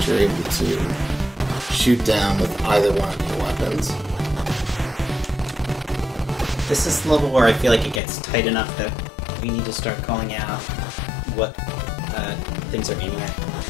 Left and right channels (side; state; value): right; drops out; at 8.0 s